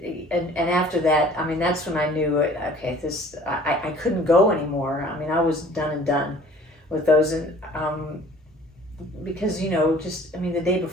And after that, that's when I knew, okay, I couldn't go anymore. I was done and done with those. And because, the day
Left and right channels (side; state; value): both; normal; correlation 0.51